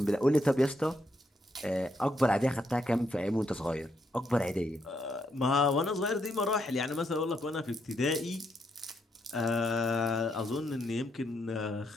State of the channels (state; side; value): normal; both; correlation 0.77